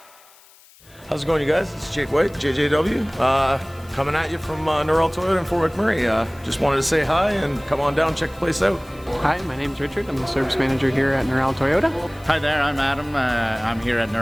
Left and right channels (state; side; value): noise; left; hiss, 26 dB below the sound